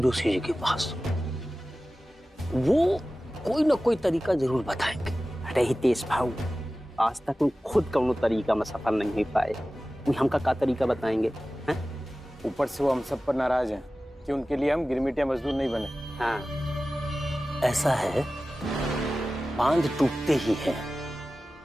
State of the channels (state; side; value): normal; both; correlation 0.96